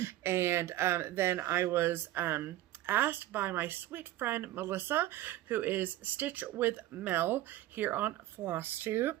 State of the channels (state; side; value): quieter; left; 15.0 dB